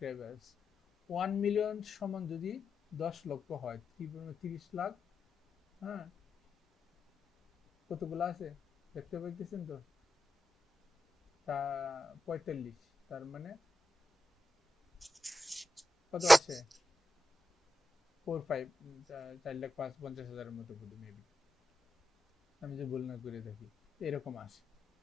1 million সমান যদি 10 লক্ষ হয়, 30 লাখ, হ্যাঁ, কতগুলো আছে দেখতে পাইতেছেন তো, তা 45, তার মানে কত আসে, 4-5, 4,50,000-50,000 মতো বোধ মেবি, আমি যে ভুল না করে থাকি, এরকম আসে।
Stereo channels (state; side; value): normal; both; correlation 0.88